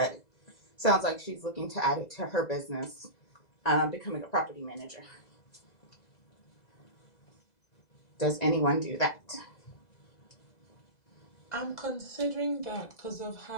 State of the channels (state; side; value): late; right; 2.0 ms